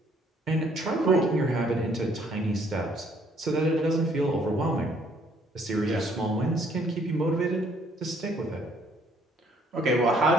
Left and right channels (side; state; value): both; normal; correlation 0.64